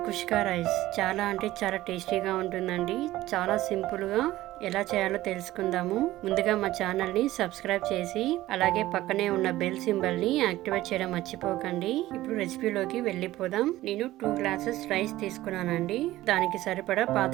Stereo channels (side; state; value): left; quieter; 16.0 dB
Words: కుష్కా rice. చాలా అంటే చాలా టేస్టీగా ఉంటుందండి. చాలా సింపుల్గా ఎలా చేయాలో తెలుసుకుందాము. ముందుగా మా ఛానల్ని సబ్స్క్రైబ్ చేసి అలాగే పక్కనే ఉన్న బెల్ సింబల్ని యాక్టివేట్ చేయడం మర్చిపోకండి. ఇప్పుడు రెసిపీలోకి వెళ్ళిపోదాం. నేను 2 గ్లాసెస్ రైస్ తీసుకున్నానండి. దానికి సరిపడా